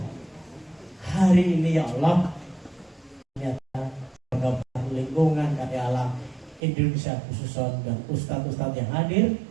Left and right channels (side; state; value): left; drops out; at 6.6 s